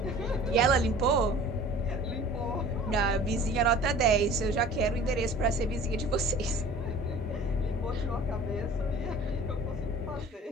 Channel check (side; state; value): both; normal; correlation 0.45